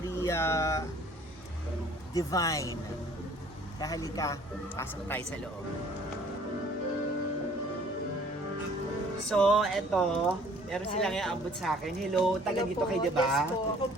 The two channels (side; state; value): both; normal; correlation 0.55